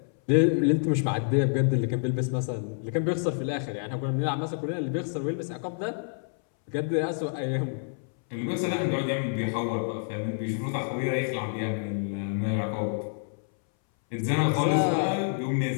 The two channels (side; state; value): right; silent; 59 dB below the other